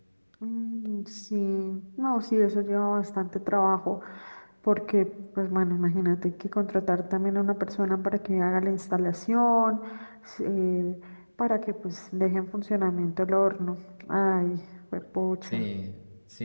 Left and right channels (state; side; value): inverted; both; correlation -1.00